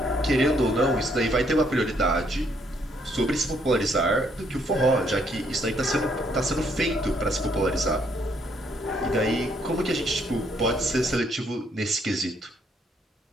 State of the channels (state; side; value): normal; both; correlation 0.70